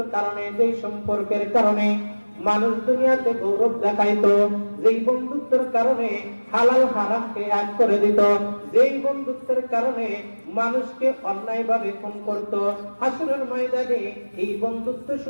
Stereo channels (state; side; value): inverted; both; correlation -1.00